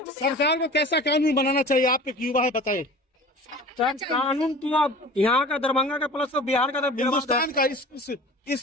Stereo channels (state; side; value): normal; both; correlation 0.41